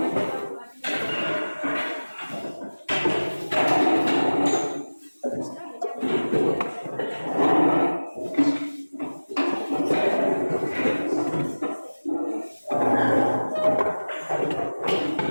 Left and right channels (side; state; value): both; inverted; correlation -1.00